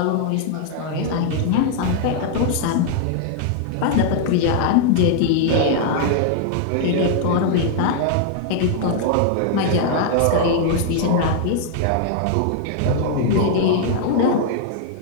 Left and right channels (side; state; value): both; different; correlation 0.00